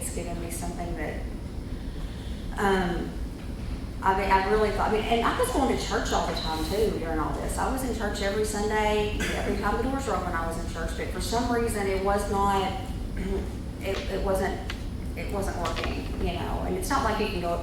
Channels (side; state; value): both; identical; correlation 1.00